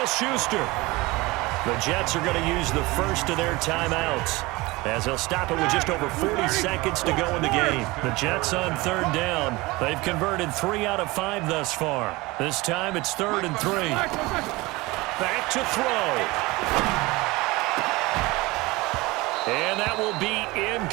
The Jets are going to use the first of their timeouts, as they'll stop it with just over 40 seconds to go in the game. The Jets on 3rd down. They've converted 3 out of 5 thus far. This time it's 3rd and 3. Back to throw. And that will be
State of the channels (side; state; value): left; quieter; 22.0 dB